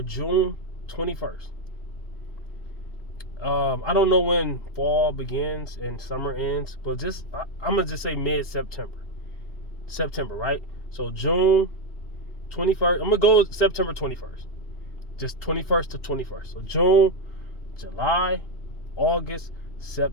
June 21st, I don't know when fall begins and summer ends, but I'm gonna just say mid-September. September, right? So June 21st. I'm gonna go September 21st. Just 21st to 21st. So June, July, August,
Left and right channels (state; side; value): late; right; 2.8 ms